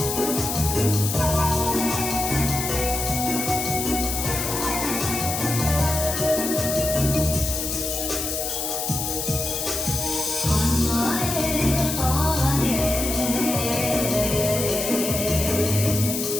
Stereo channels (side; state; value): left; noise; hiss, 3 dB below the sound